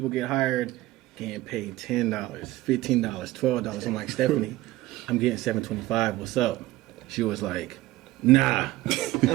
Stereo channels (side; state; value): left; quieter; 17.6 dB